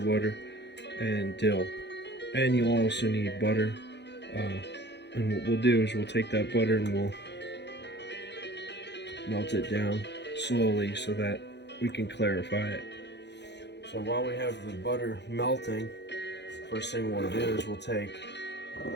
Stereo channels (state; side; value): late; right; 0.50 ms